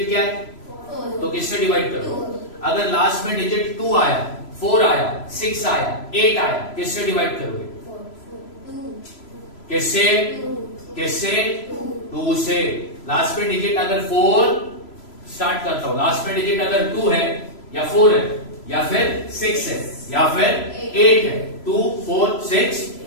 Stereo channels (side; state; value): right; late; 3.0 ms